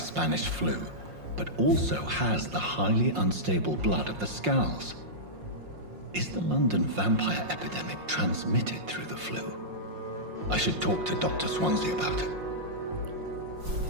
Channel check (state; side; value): late; left; 5.6 ms